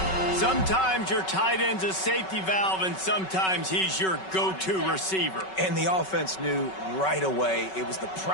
Sometimes your tight end's a safety valve, and sometimes he's your go-to receiver. And the offense knew right away it was the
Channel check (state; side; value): late; right; 5.3 ms